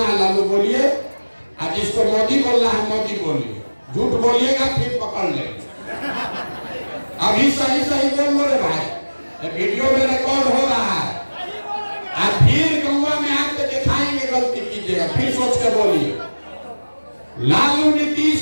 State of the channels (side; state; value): both; inverted; correlation -1.00